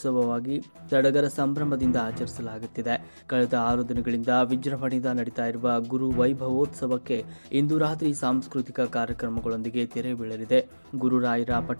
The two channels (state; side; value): inverted; both; correlation -1.00